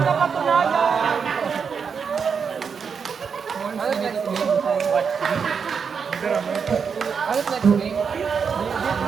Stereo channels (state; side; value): quieter; left; 6.2 dB